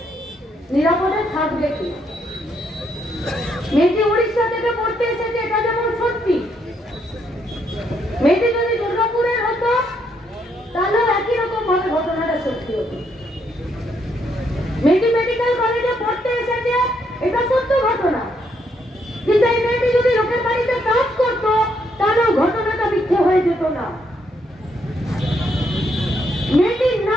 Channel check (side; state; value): both; normal; correlation 0.74